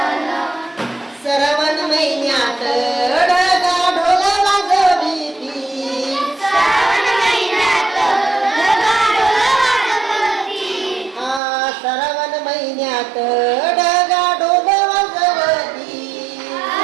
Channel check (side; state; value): left; drops out; at 11.4 s